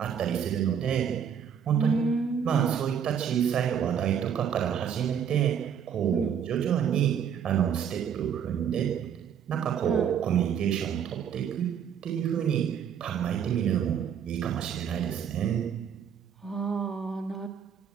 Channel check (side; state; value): left; quieter; 8.1 dB